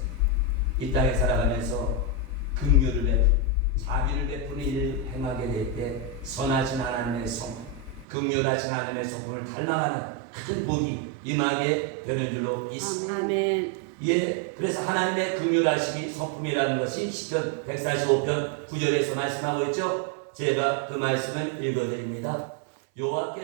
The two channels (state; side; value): drops out; left; at 8.1 s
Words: 이 땅에 살아가면서 긍휼을 베푸고 자비를 베푸는 일을 행하게 될 때 선하신 하나님의 성품, 긍휼하신 하나님의 성품을 닮아가는 큰 복이 임하게 되는 줄로 믿습니다. 아멘. 예, 그래서 하나님의 긍휼하심이 성품이라는 것이 시편 145편 9절에서 말씀하고 있죠. 제가 그 말씀을 읽어드립니다.